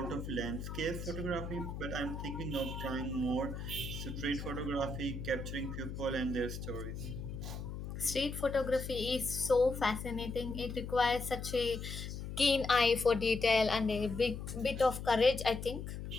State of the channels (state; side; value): noise; left; hum, 7 dB below the sound